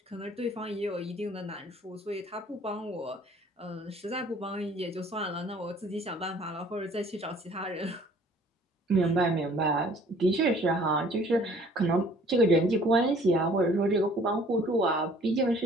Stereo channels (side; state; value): both; normal; correlation 0.55